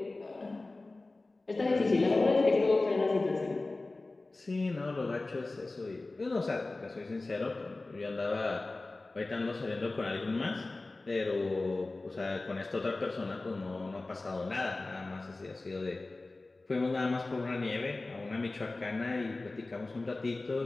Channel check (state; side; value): quieter; right; 3.2 dB